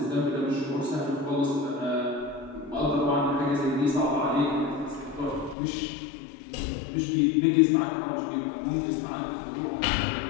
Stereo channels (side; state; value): right; drops out; at 5.6 s